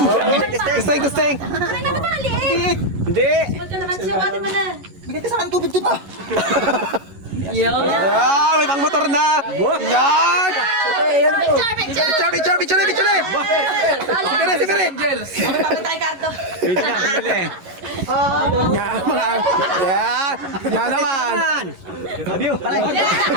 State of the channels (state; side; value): late; left; 11 ms